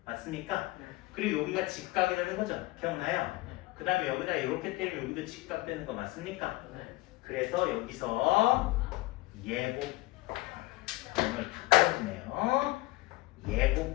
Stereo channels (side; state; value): right; quieter; 20.2 dB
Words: 맞습니까? 네. 그리고 여기가 직각이 되는 거죠. 기억나요? 네. 그 다음에 여기다 이렇게 때리면 여기도 직각 되는 거 맞습니까? 네. 그래서 여기서 예곱을 다 빼주네요. 예